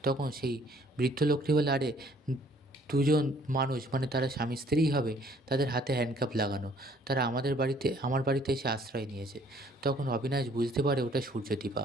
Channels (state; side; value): normal; both; correlation 0.60